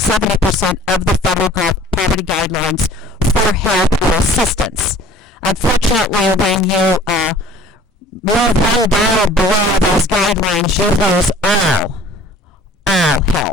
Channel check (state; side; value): normal; both; correlation 0.50